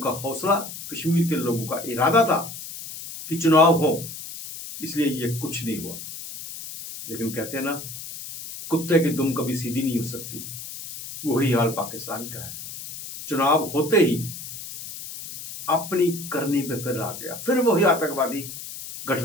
हौसला, कश्मीर के लोगों का इरादा था कि चुनाव हो, इसलिए ये कुछ नहीं हुआ। लेकिन कहते हैं ना, कुत्ते की दुम कभी सीधी नहीं हो सकती, वही हाल पाकिस्तान का है। चुनाव होते ही अपनी करनी पे फिर आ गया, फिर वही आतंकवादी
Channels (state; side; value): noise; left; hiss, 11 dB below the sound